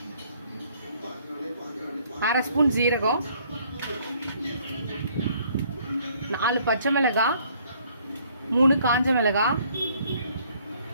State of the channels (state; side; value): inverted; both; correlation -0.62